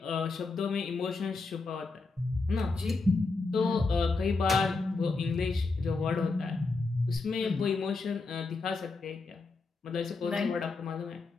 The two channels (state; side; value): quieter; right; 3.9 dB